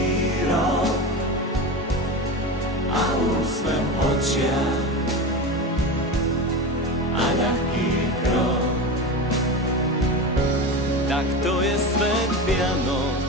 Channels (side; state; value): both; normal; correlation 0.24